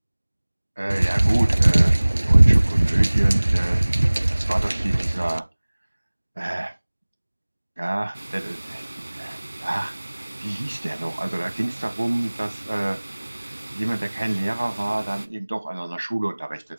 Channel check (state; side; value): inverted; both; correlation -1.00